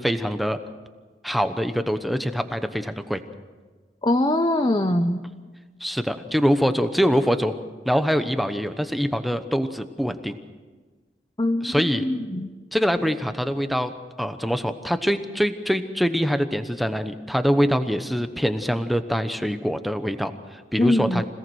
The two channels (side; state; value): both; normal; correlation 0.92